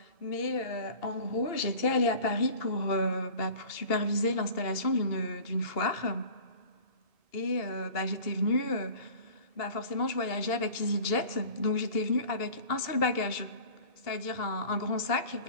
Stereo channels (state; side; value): late; right; 2.7 ms